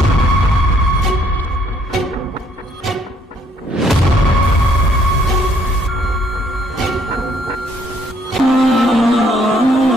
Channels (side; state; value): both; normal; correlation 0.66